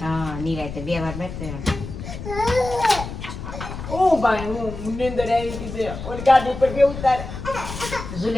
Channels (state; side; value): noise; left; rumble, 9 dB below the sound